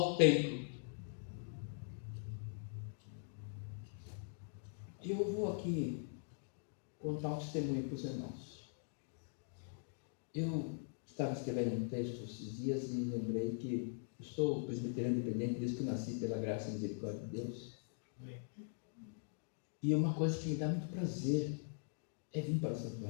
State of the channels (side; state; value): right; silent; digital silence